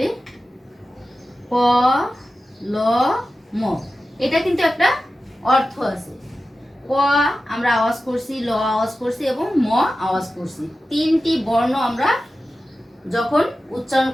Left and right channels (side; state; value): both; normal; correlation 0.94